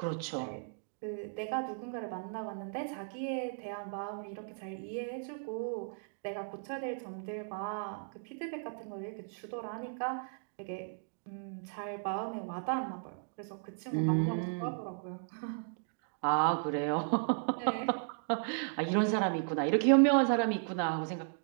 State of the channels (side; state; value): left; silent; digital silence